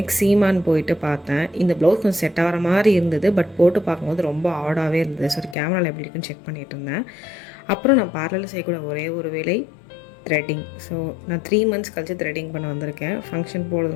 சீமான் போயிட்டு பார்த்தேன். இந்த ப்ளவுஸ் கொஞ்சம் செட் ஆகிற மாதிரி இருந்தது, பட் போட்டு பார்க்கும்போது ரொம்ப ஆடாகவே இருந்தது. ஸோ கேமராவில் எப்படி இருக்குன்னு செக் பண்ணிகிட்டு இருந்தேன். அப்புறம் நான் பார்லரில் செய்யக்கூட ஒரே ஒரு வேலை த்ரெட்டிங். ஸோ நான் 3 months கழிச்சு த்ரெட்டிங் பண்ண வந்திருக்கேன். ஃபங்க்ஷன்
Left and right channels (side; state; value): right; drops out; at 5.6 s